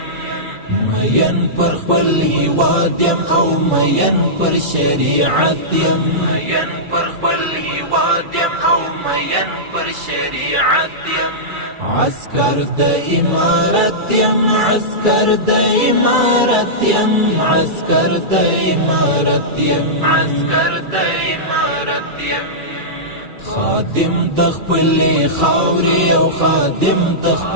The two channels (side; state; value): left; late; 2.3 ms